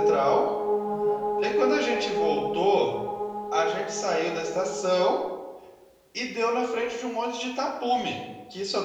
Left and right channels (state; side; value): identical; both; correlation 1.00